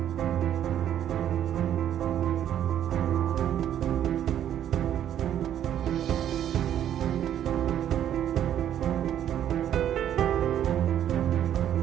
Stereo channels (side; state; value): left; quieter; 10.5 dB